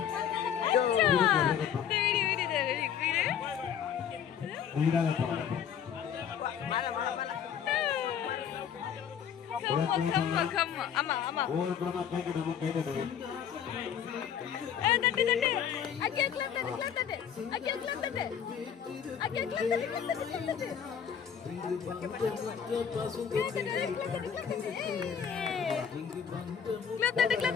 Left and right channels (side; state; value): right; quieter; 8.3 dB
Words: ஆமா ஆமா தட்டு தட்டு அக்கே கிளப் தட்டு கிளப் தட்டு அக்கே கிளப் தட்டு அக்கே கிளப் தட்டு கிளப் தட்டு